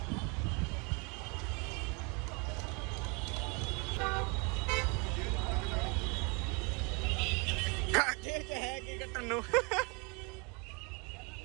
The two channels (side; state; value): left; quieter; 30.6 dB